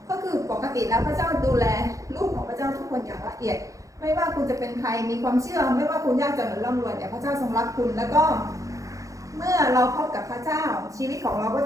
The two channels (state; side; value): late; left; 0.16 ms